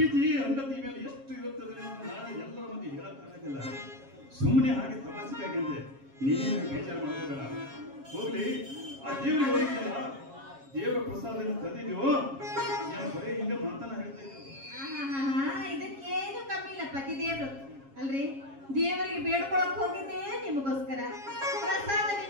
ಹೆಂಡತಿ ಮೇಲೆ ಎಷ್ಟು ಇರುತ್ತದೆ ಅಂತ ನಾನು ಎಲ್ಲರ ಮಂದಿ ಹೇಳಕ್ಕಾಗಲ್ಲ. ಸುಮ್ಮನೆ ಹಾಗೆ ತಮಾಷೆಗಾಗಿ ಅಂದೆ, ನೀನೇನು ಬೇಜಾರು ಮಾಡೋಬೇಡ. ಹೋಗ್ಲಿ, ಆ ದೇವರಿಗೆ ಹೋಗಿದ್ದಲ್ಲ, ದೇವರ ಪ್ರಸಾದನ ತಂದಿದ್ಯೋ ನಾನು ಬರೀ ಹಿಂಗ ಮಾತನ್ನ ಹೇಳ್ತಾ ಇದ್ದು. ಇದಕ್ಕೇನು ಕಮ್ಮಿ ಇಲ್ಲ ಪತಿ ದೇವ್ರು ಅಲ್ರಿ. ದೇವರಿಗೆ ಬೇಡ್ಕೊಳಕ್ ಹೋಗಿದ್ದೆ ನಿಮಗೋಸ್ಕರ. ಪ್ರಸಾದ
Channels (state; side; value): late; left; 7.3 ms